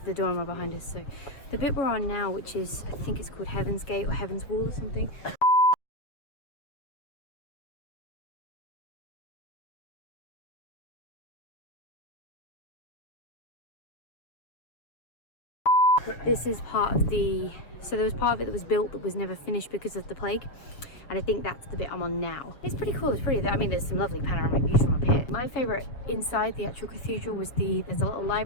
Duomo behind us. So the bit we're on now, which is, I think it's called Heaven's Gate or Heaven's Wall or something. This is part of the, so there was part of it that was built that was never finished because of the plague, and I think that's the bit I'm on now. It's pretty cool. It's pretty, I mean, there's some lovely panoramic views from up here. My favourite inside the actual cathedral was there's a little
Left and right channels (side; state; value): right; late; 7.0 ms